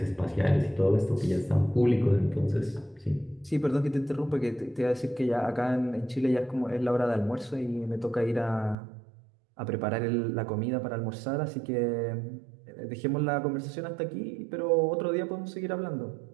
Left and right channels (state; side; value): drops out; left; at 8.8 s